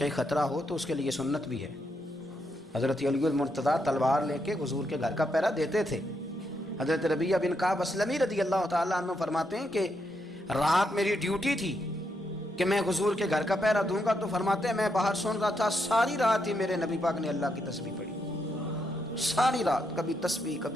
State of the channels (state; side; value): normal; both; correlation 0.80